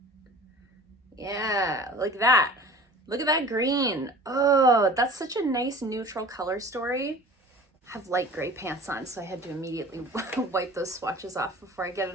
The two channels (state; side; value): normal; both; correlation 0.42